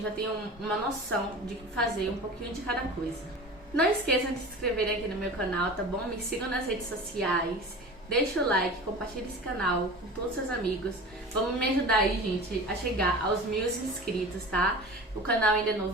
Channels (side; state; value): both; normal; correlation 0.35